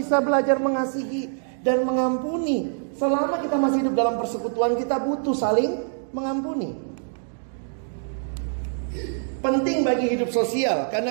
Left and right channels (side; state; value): left; silent; digital silence